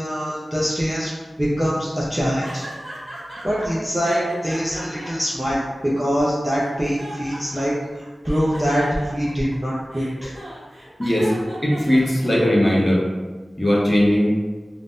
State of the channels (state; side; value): normal; both; correlation 0.96